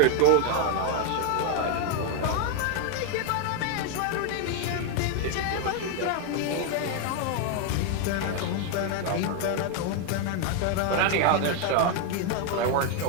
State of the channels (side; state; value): both; different; correlation 0.01